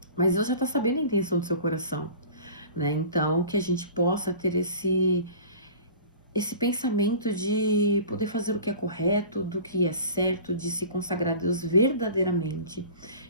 Mas Deus já está sabendo a intenção do seu coração, né? Então, que a gente possa ter esse pensamento de poder fazer o que é correto, do que é certo, de se consagrar a Deus verdadeiramente.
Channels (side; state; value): both; inverted; correlation -0.41